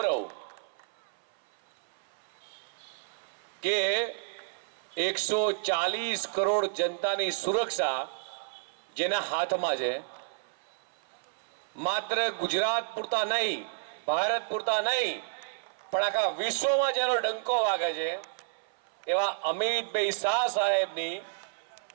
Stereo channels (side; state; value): left; silent; 57 dB below the other